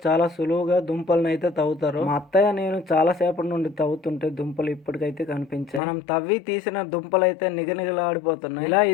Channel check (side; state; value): right; drops out; at 5.8 s